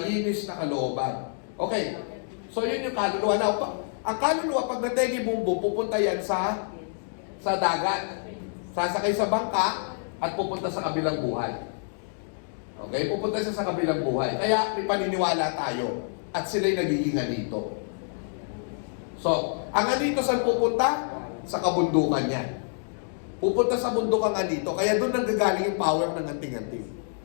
na kalooban. Okay. So, yun yung kaluluwa. Now, ang kaluluwa, pag nategi bumbo, pupunta yan sa dagat. Sasakay sa bangka at pupunta sa kabilang buhay. Okay? Pupunta siya sa kabilang buhay. Kaya may paniniwala tayo. At sila'y nagiging anito. So, ang anito saan pupunta? Sa kabundukan niya. Pupunta sa bundok ang anito. Kaya doon nanggagaling yung power ng anting-anting.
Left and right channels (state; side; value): silent; right; digital silence